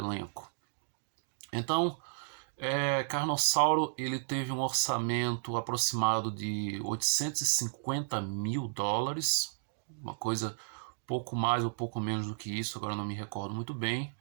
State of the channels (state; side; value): silent; left; digital silence